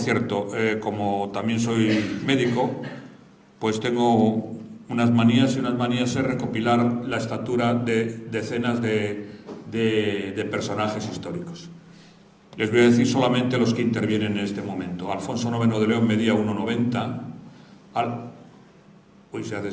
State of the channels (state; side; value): identical; both; correlation 1.00